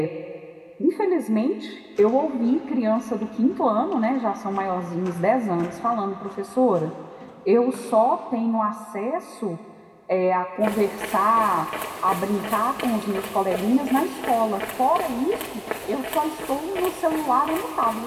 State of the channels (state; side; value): identical; both; correlation 1.00